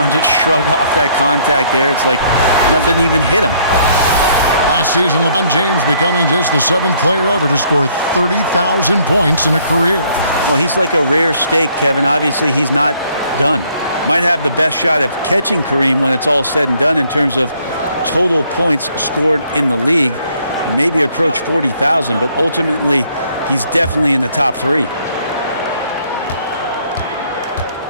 just shrug off that contact there? It's like nothing even hit him. Last season, LeBron James becoming just the 7th player ever to score 30,000 points in a career. Well, he's like a rare steak, Kevin. Obviously, he's not done. Might have the best shot of catching Kareem when it's all said and done in terms of total points scored in the league. Maybe approach 40,000, but ultimately, he's definitely in the top 3.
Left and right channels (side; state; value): both; inverted; correlation -0.65